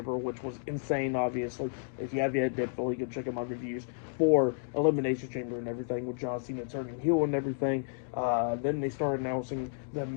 which was insane, obviously. If you have yet, definitely go check out my reviews for Elimination Chamber and everything, with John Cena turning heel and everything. Then they started announcing the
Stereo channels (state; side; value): silent; right; digital silence